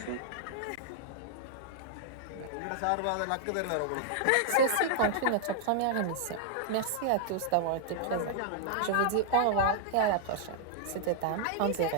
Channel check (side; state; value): both; different; correlation -0.01